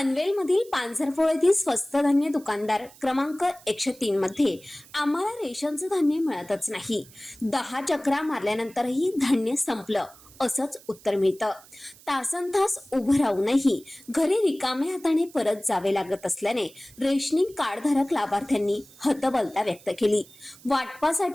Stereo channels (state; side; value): noise; right; hiss, 23 dB below the sound